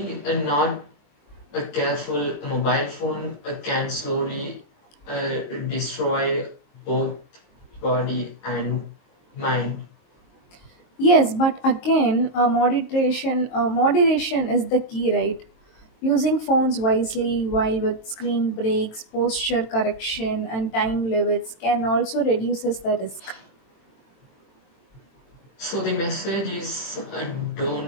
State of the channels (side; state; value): right; late; 22 ms